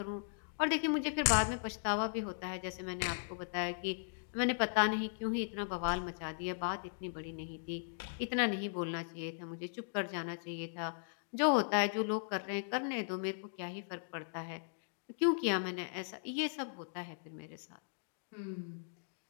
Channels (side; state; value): right; silent; digital silence